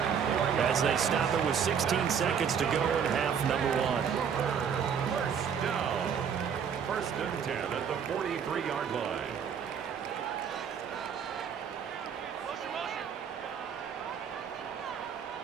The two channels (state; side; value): quieter; left; 7.4 dB